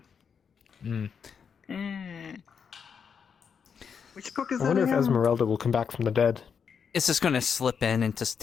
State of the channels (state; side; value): quieter; right; 6.7 dB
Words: Which book is I that wonder if again? Esmeralda will come back from the dead. It's just going to slip in and just